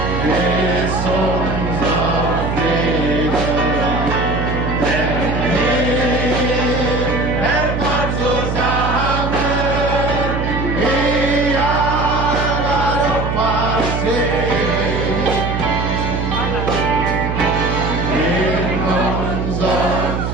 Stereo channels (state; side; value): noise; right; hum, 2 dB below the sound